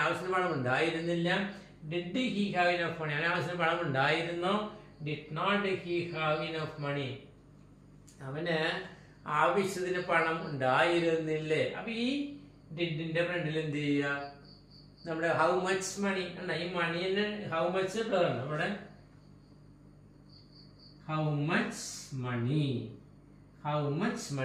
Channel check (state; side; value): identical; both; correlation 1.00